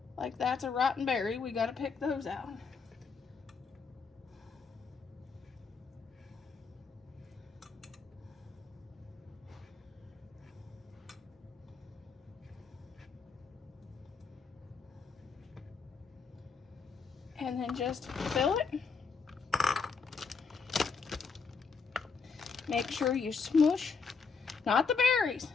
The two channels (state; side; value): quieter; right; 5.2 dB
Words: like that's a rotten berry, we got to pick those out. And then just fill it. Make sure you smush, not the berries.